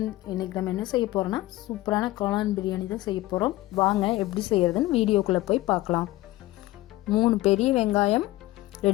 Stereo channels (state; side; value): quieter; right; 17.6 dB